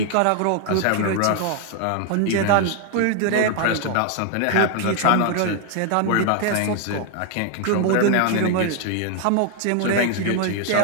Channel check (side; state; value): both; different; correlation 0.00